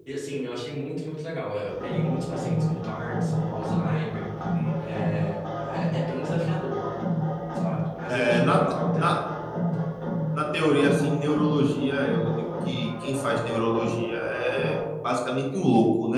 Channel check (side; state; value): both; identical; correlation 1.00